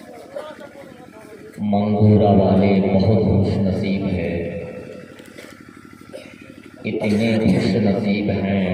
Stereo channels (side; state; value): both; identical; correlation 1.00